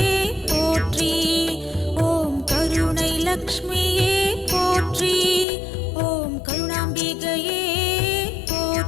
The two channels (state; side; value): drops out; right; at 5.5 s